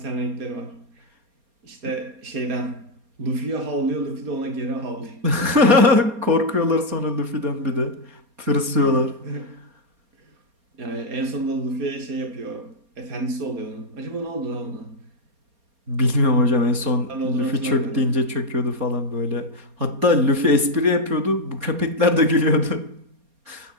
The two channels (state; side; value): late; left; 4.3 ms